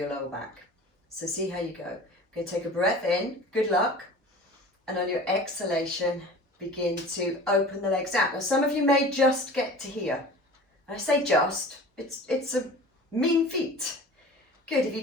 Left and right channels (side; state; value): both; normal; correlation 0.40